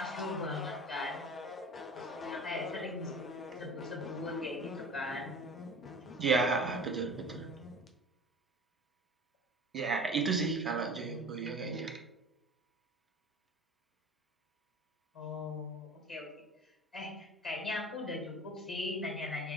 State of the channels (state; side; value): normal; both; correlation 0.40